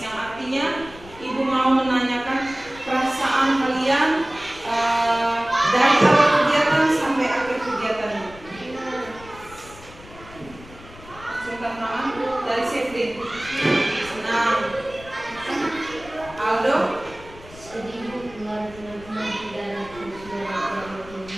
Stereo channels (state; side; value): noise; left; rumble, 19 dB below the sound